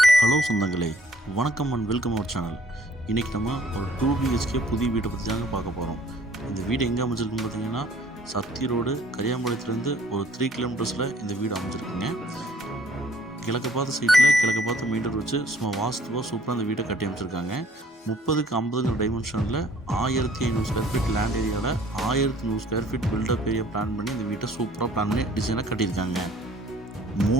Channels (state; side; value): normal; both; correlation 0.57